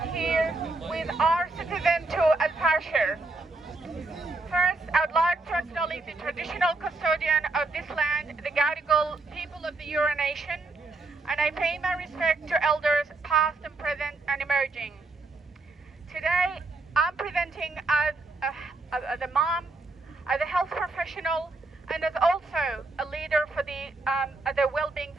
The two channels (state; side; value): quieter; left; 3.3 dB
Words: here with our citizen to El-Fasher. First, I'd like to acknowledge the traditional custodian of this land, the Gadigal people of the Eora Nation, and I pay my respect to elders past and present and emerging. Today, I'm presenting as a mom, as a health professional, and as also a leader for the well-being